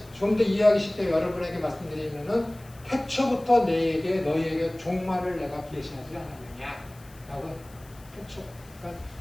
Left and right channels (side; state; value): left; noise; hiss, 25 dB below the sound